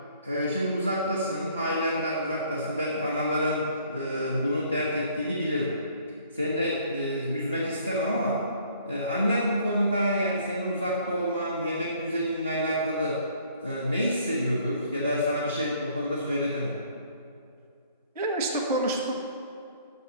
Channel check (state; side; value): inverted; both; correlation -0.60